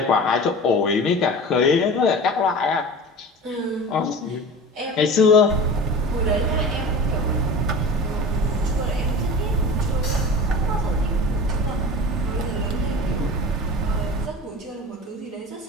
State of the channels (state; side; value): normal; both; correlation 0.35